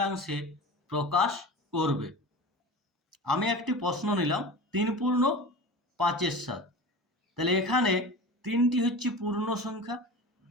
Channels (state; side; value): normal; both; correlation 0.33